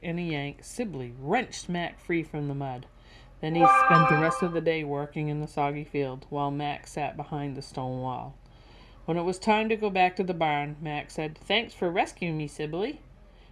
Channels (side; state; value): both; identical; correlation 1.00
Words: and a yank, Sibley wrenched Mac free from the mud. Then he spent the rest of the day working in the soggy field, while Mac sat behind the stone wall. When it was time to go back to the barn, Mac said, "Thanks for rescuing me, Sibley."